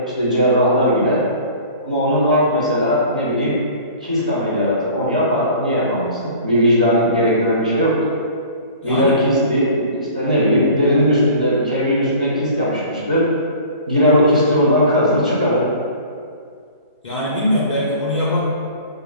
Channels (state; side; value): inverted; both; correlation -0.45